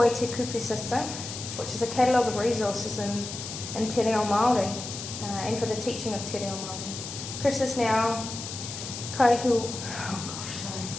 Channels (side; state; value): left; noise; hiss, 8 dB below the sound